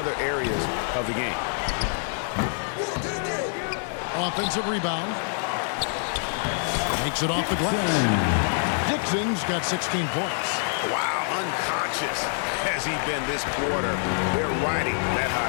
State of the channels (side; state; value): right; silent; 61 dB below the other